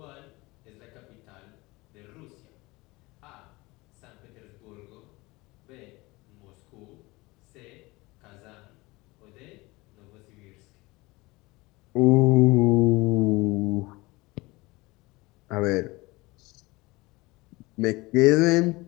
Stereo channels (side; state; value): right; quieter; 22.4 dB